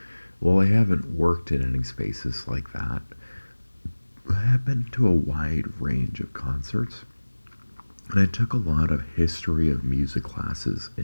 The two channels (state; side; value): inverted; both; correlation -1.00